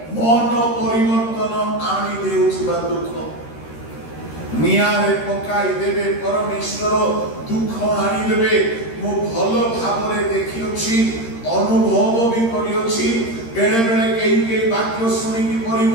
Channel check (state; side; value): late; right; 13 ms